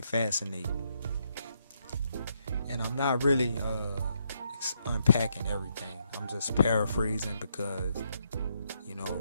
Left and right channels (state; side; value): inverted; both; correlation -0.76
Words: and I'm not really unpacking everything. I'm just paraphrasing because, you